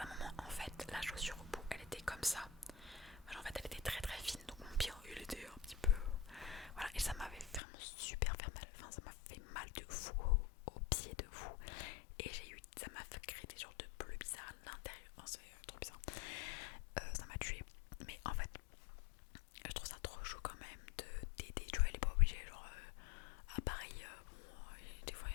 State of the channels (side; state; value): right; drops out; at 7.6 s